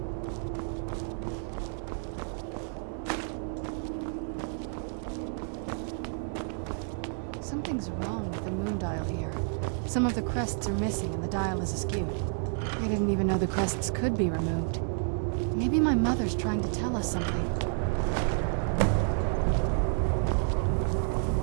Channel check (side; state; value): left; silent; 58 dB below the other